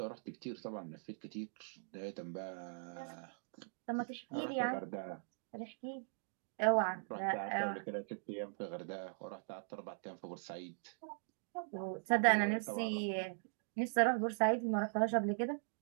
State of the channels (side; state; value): left; silent; digital silence